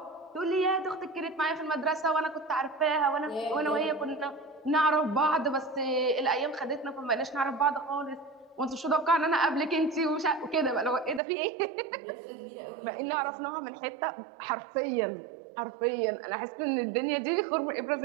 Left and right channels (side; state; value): left; drops out; at 11.2 s